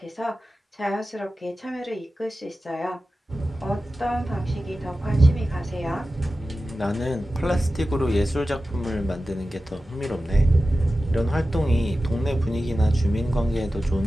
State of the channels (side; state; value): both; normal; correlation 0.94